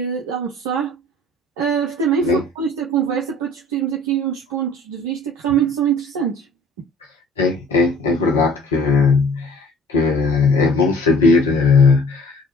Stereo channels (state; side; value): normal; both; correlation 0.50